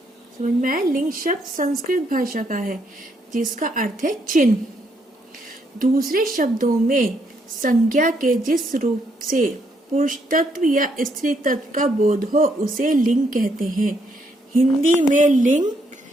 समझ में आया? लिंग शब्द संस्कृत भाषा का है जिसका अर्थ है चिन्ह। दूसरे शब्दों में संज्ञा के जिस रूप से पुरुष तत्व या स्त्री तत्व का बोध हो उसे लिंग कहते हैं। हिंदी में लिंग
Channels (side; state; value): both; normal; correlation 0.74